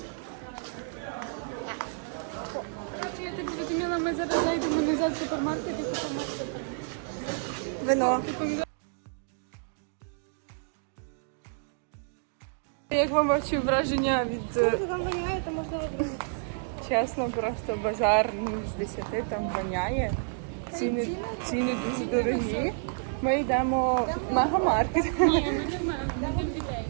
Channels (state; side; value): silent; left; digital silence